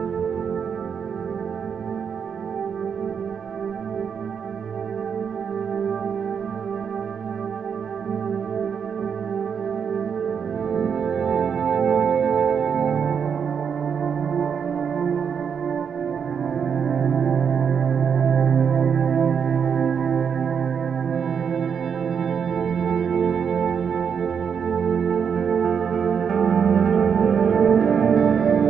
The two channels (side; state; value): left; quieter; 7.0 dB